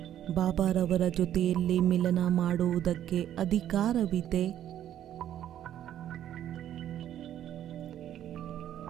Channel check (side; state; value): left; quieter; 11.2 dB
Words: ಬಾಬಾರವರ ಜೊತೆಯಲ್ಲಿ ಮಿಲನ ಮಾಡುವುದಕ್ಕೆ ಅಧಿಕಾರವಿದೆ.